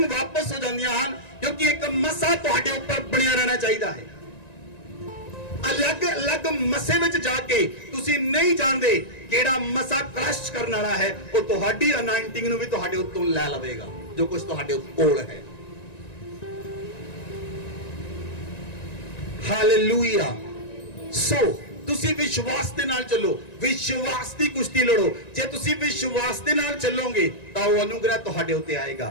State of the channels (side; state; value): right; late; 1.9 ms